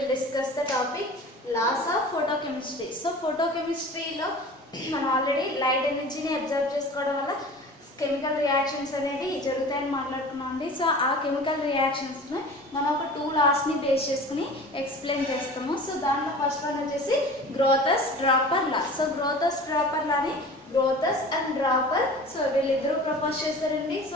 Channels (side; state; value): both; normal; correlation 0.39